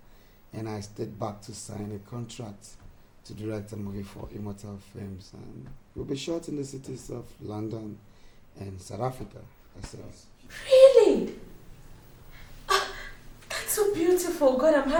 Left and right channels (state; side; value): identical; both; correlation 1.00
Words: And I stayed back to sign a contract to direct a movie for Immortal Films. And we'll be shot in the cities of London and South Africa. Really? That's so beautiful. God, I'm